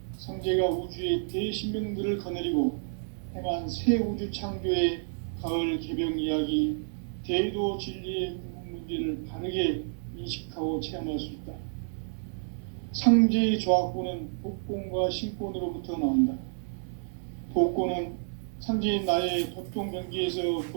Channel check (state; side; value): silent; left; digital silence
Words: 상제가 우주의 대신명들을 거느리고 행한 새 우주 창조의 가을 개병 이야기, 대도 진리의 문제를 바르게 인식하고 체험할 수 있다. 상제의 조화권은 복권과 신권으로부터 나온다. 복권은 상제인 나의 도통 경계에서